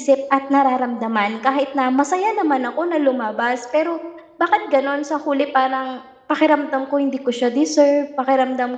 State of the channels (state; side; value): identical; both; correlation 1.00